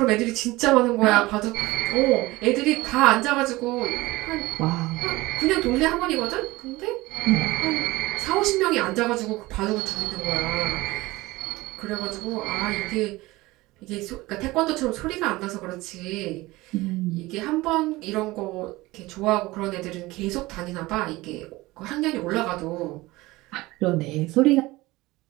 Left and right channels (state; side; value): quieter; left; 20.1 dB